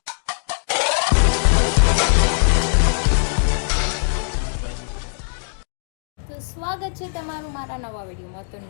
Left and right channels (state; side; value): silent; right; digital silence